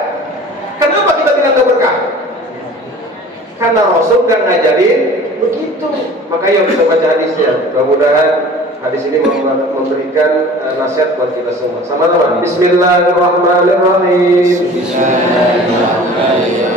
Kenapa kita bilang enggak berkah? Karena Rasul kan ngajarin begitu. Makanya kita baca hadisnya. Mudah-mudahan hadis ini memberikan nasihat buat kita semua. Sama-sama. Bismillahirrahmanirrahim.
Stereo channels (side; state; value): both; normal; correlation 0.44